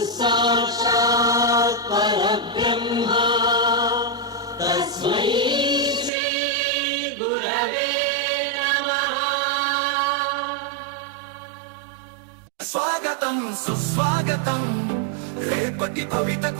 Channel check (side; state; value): left; drops out; at 6.1 s